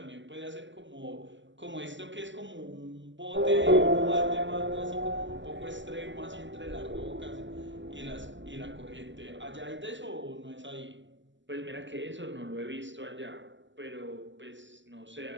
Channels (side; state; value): left; late; 0.54 ms